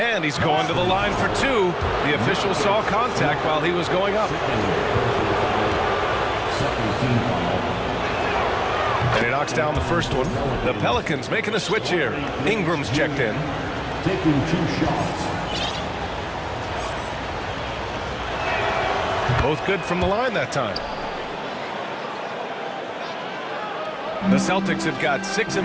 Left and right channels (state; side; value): identical; both; correlation 1.00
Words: he's going to the line for 2. The official saw contact while he was going up. And he knocks down the first one. The Pelicans making a switch here. Ingram's checked in. Taking 2 shots. Both good from the line that time. The Celtics have got 6 of